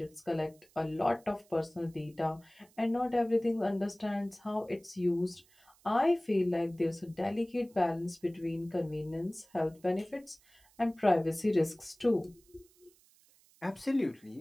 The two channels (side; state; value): right; noise; hiss, 30 dB below the sound